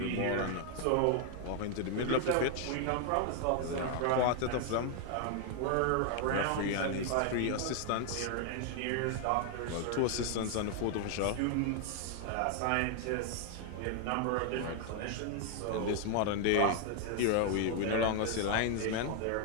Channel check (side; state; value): both; different; correlation 0.00